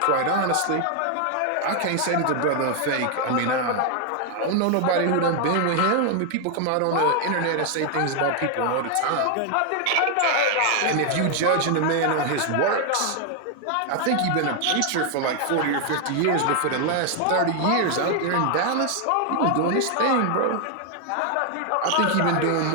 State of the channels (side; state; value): both; different; correlation 0.00